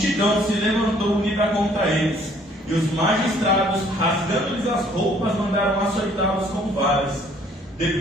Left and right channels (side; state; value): both; normal; correlation 0.60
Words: se levantou unida contra eles, e os magistrados, rasgando-lhes as roupas, mandaram açoitá-los com varas.